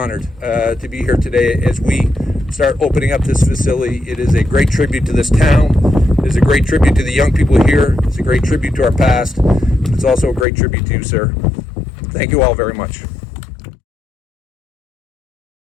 to be here today as we start opening up this facility. It is a great tribute to this town. It is a great tribute to the young people here. It's a great tribute to our past. It's also a great tribute to you, sir. Thank you all very much.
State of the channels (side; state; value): right; drops out; at 10.5 s